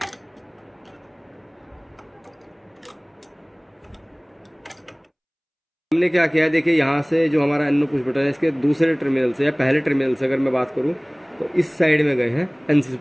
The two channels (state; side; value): identical; both; correlation 1.00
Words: हमने क्या किया है, देखिए यहाँ से जो हमारा एनो पुश बटन है इसके दूसरे टर्मिनल से या पहले टर्मिनल से अगर मैं बात करूँ तो इस साइड में गए हैं एनसी